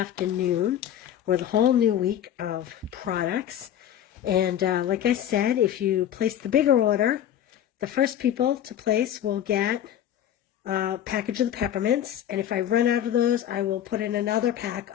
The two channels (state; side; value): quieter; right; 10.6 dB